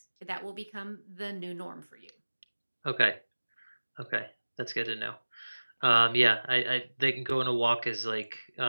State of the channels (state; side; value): inverted; both; correlation -1.00